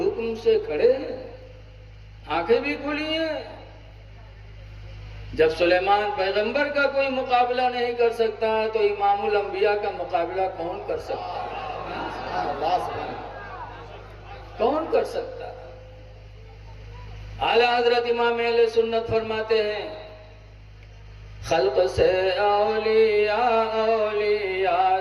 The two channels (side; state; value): both; identical; correlation 1.00